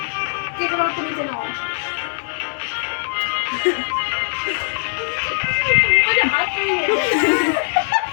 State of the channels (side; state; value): right; silent; digital silence